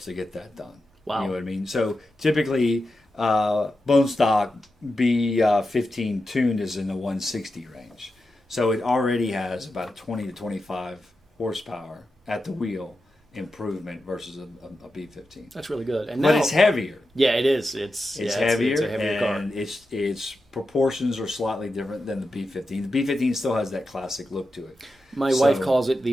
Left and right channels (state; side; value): normal; both; correlation 0.90